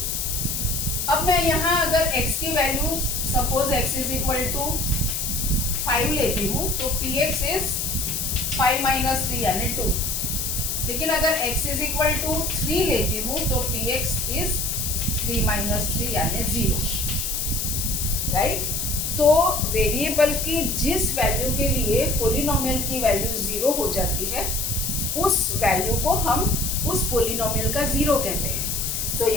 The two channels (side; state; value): left; noise; hiss, 1 dB below the sound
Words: अब मैं यहाँ अगर x की value suppose x is equal to 5 लेती हूँ तो px इज 5 माइनस 3 यानी 2। लेकिन अगर x इज इक्वल टू 3 लेती हूँ तो px इज 3 माइनस 3 यानी 0, राइट। तो वेरिएबल की जिस वैल्यू के लिए पोलिनोमियल की वैल्यू 0 हो जाती है उस वैल्यू को हम उस पोलिनोमियल का जीरो कहते हैं। तो